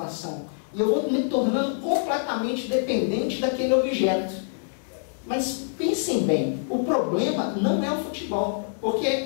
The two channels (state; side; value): silent; right; 57 dB below the other